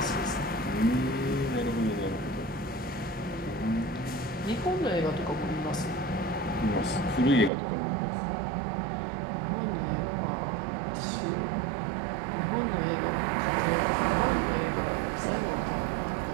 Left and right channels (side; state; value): left; drops out; at 7.5 s